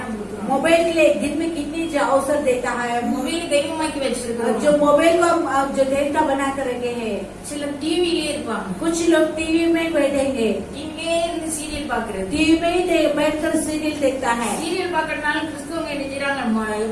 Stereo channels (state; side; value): identical; both; correlation 1.00